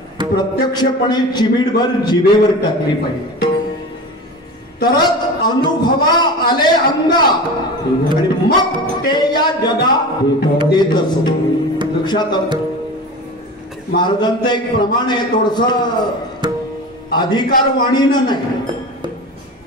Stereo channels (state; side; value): normal; both; correlation 0.31